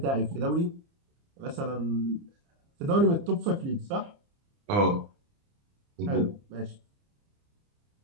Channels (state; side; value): late; left; 29 ms